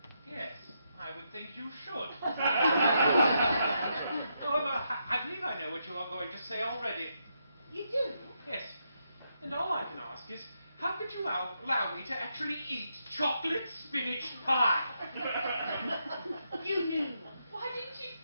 Yes, I would think you should. However, I believe I know what you are going to say already. You do? Yes. And all I can ask is, how could you allow me to actually eat chocolate spinach pie? You knew. Why didn't you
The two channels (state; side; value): inverted; both; correlation -0.81